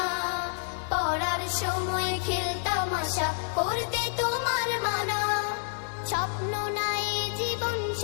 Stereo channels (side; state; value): right; silent; 56 dB below the other